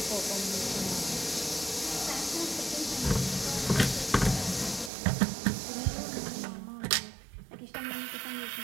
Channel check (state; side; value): drops out; left; at 4.9 s